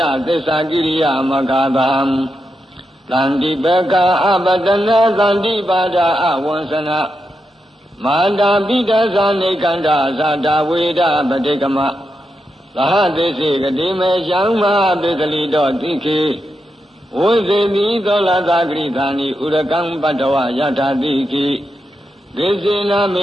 သစ္စာကိရိယမဂါသံသန္တိပကအပတနာသန္တိပါဒအဝံစနာမာတာပိတသနေကန္တာဇာတာဝေဒပတိကမသဟသိစေကတိမေရှံမပိသလိတောတိခေဝိသေမိသောလသာဂရိသာနိဥရကံပတ္တဝယထာတိခိဒေစေနမ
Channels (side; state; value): both; normal; correlation 0.86